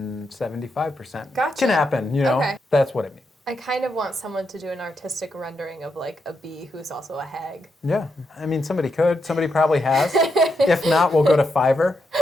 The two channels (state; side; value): normal; both; correlation 0.83